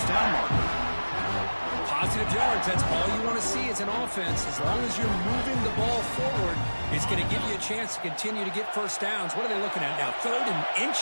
down marker. Positive yards, that's all you want to see as an offense. As long as you're moving the ball forward, it's going to give you a chance to continue to get 1st downs. What are they looking at now? 3rd and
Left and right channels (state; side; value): inverted; both; correlation -1.00